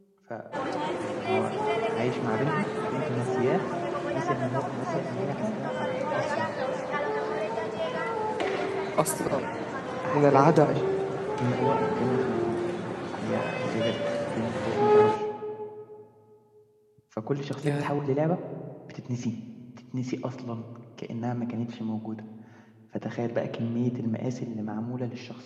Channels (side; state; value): both; identical; correlation 1.00